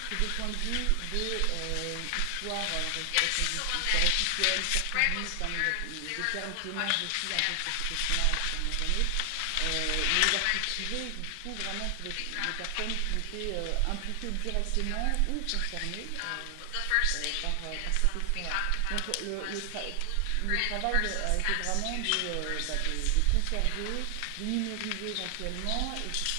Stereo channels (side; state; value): both; different; correlation 0.00